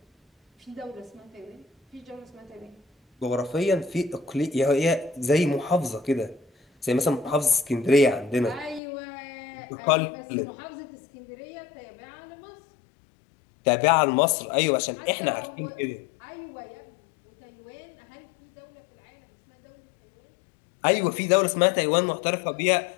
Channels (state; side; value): drops out; right; at 8.8 s